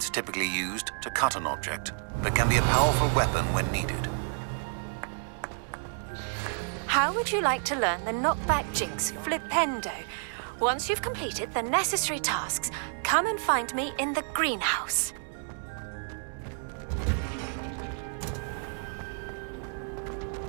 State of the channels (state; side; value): silent; left; 58 dB below the other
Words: typically used to cut an object, but can be a powerful weapon when needed. How would you like to learn the knockback jinx, Flipendo? Once you've completed the necessary tasks, come and find me in the greenhouse.